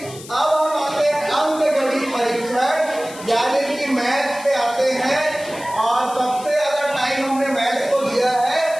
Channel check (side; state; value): left; noise; hiss, 16 dB below the sound